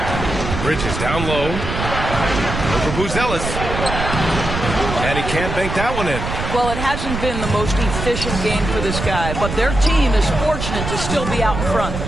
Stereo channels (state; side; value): noise; right; rumble, 5 dB below the sound